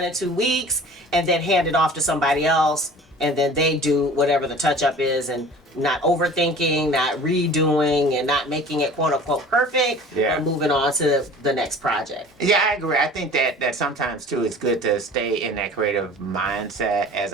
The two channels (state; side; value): normal; both; correlation 0.44